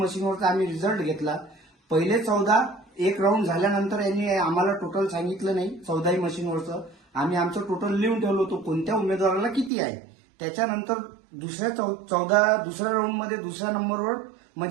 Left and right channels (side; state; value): left; drops out; at 9.7 s